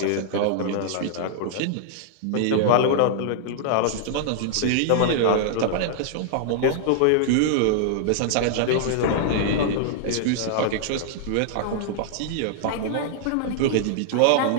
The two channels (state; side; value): different; both; correlation -0.01